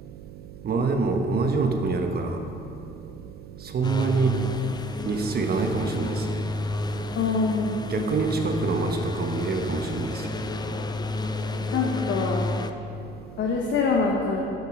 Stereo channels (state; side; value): noise; right; hum, 16 dB below the sound